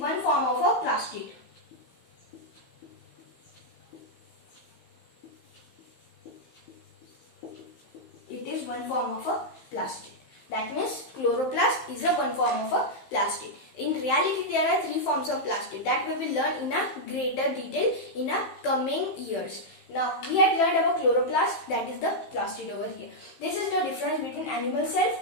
form of a plastid. It is one form of a plastid. That means chloroplast is a one form of a plastid. In reality, there are 3 forms of plastid that we will learn in a greater detail in a coming years. Now, we had learned about chloroplast, that is the plastid over here. This is the difference between animal cells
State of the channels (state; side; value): late; right; 15 ms